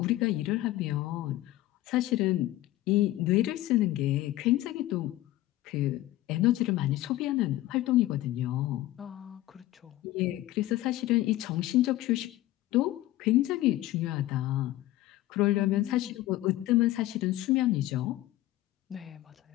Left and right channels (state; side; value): quieter; right; 15.7 dB